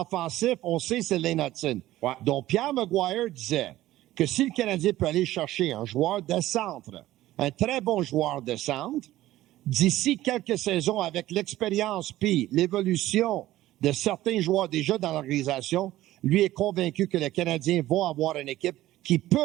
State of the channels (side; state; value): left; quieter; 15.4 dB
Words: on sait, c'est Lane Hudson. Ouais. Donc, Pierre Maguire disait que si le Canadien peut aller chercher un joueur de centre, un très bon joueur de centre, d'ici quelques saisons, avec l'expérience puis l'évolution de certains joueurs déjà dans l'organisation, lui est convaincu que les Canadiens vont avoir une équipe qui